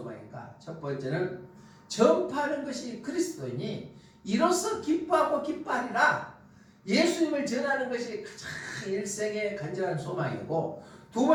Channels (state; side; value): identical; both; correlation 1.00